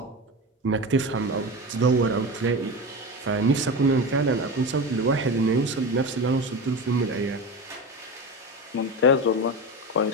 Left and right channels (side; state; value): both; normal; correlation 0.24